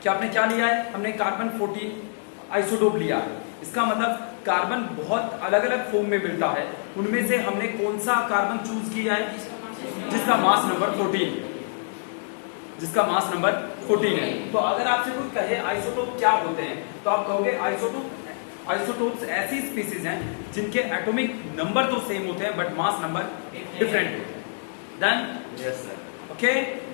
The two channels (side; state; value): right; silent; digital silence